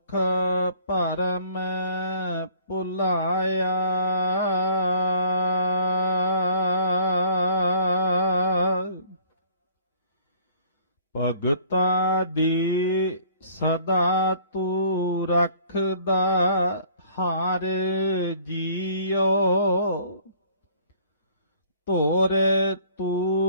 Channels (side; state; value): both; inverted; correlation -0.55